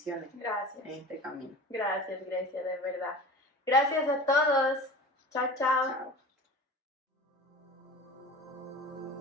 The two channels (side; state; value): both; normal; correlation 0.36